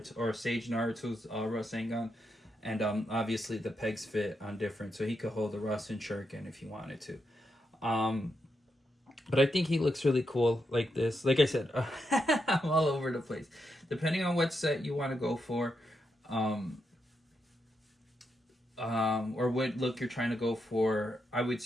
or Sage Naruto's Rasengan, and obviously the pegs fit on different, so he could hold the Rasen Shuriken if he wanted to. But I think he looks really cool like this. Like I said, I'm all over the place. Depending on what set you want to go for, or what look you're trying to go for, I would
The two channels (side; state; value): both; normal; correlation 0.83